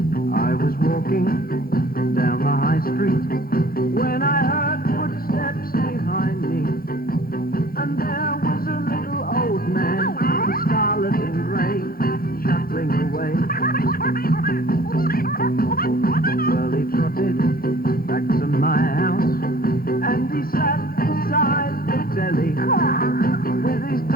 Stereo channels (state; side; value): late; right; 0.43 ms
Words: I was walking down the high street when I heard footsteps behind me, and there was a little old man, scarlet and grey, shuffling away. Well, he trotted back to my house, and he sat beside the telly with his